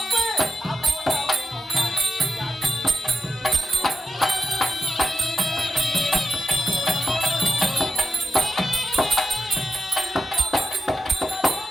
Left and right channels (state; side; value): normal; both; correlation 0.86